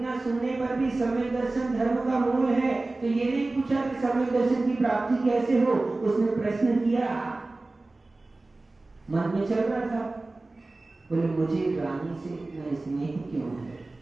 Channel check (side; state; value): left; quieter; 3.1 dB